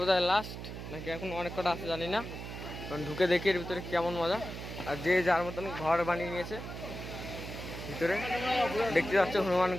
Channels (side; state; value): right; noise; hum, 9 dB below the sound